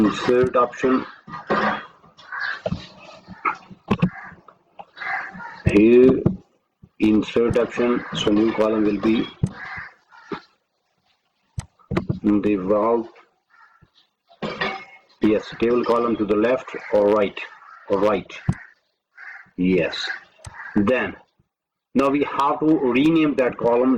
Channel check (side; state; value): both; identical; correlation 1.00